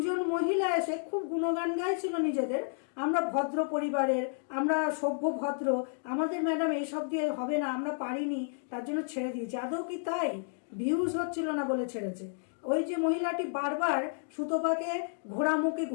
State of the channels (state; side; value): silent; right; digital silence